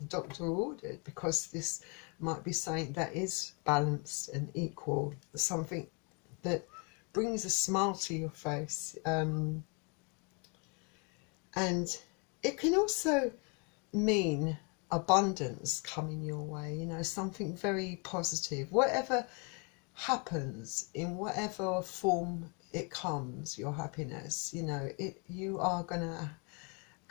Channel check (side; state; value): right; quieter; 34.2 dB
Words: doctor ordered, because this might be something that is balanced and equal, something that brings a smile to your face. And it can also mean abundance coming your way, you know, something very positive. Whatever happens, in whatever form it comes, your happiness, you know, you are gonna